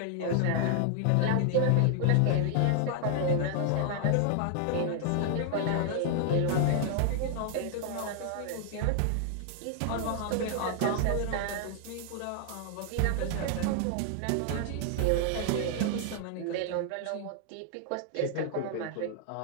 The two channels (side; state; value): both; different; correlation -0.01